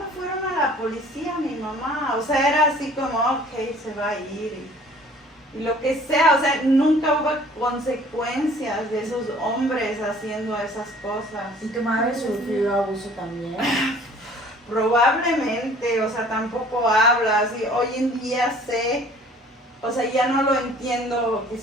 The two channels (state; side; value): normal; both; correlation 0.52